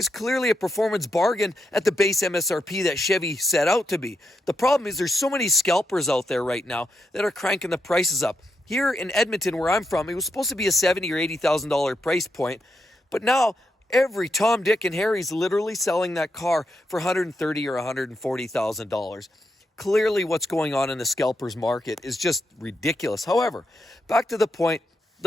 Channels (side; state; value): both; normal; correlation 0.83